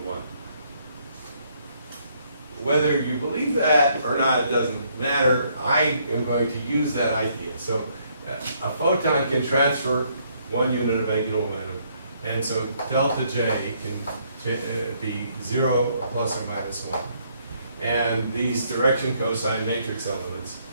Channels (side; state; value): both; inverted; correlation -0.69